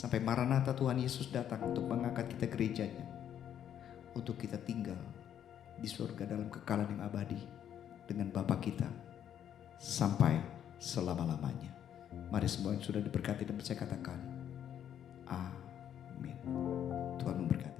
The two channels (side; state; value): right; quieter; 9.8 dB